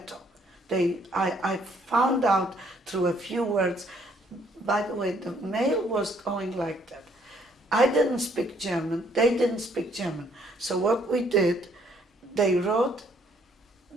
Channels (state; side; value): normal; both; correlation 0.65